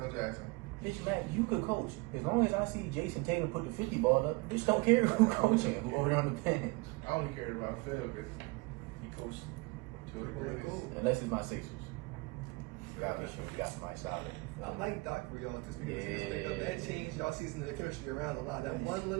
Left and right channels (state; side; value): quieter; left; 25.2 dB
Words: Jackson. Bitch, Mac, you could coach. As long as I see Jason Tatum put the 50 ball up, bitch don't care who coaching, who over there on the bench. I only cared about Phil because he coached two of the greatest. Unless it's my Sixers. We got somebody solid. I like Doc for y'all just because that changed y'all season the chemistry around a lot. That one